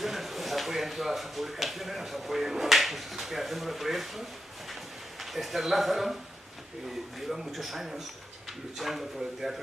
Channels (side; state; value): both; normal; correlation 0.87